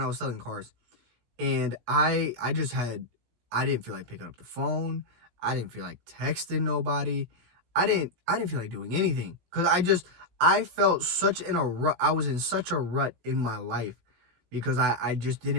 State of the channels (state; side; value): late; left; 17 ms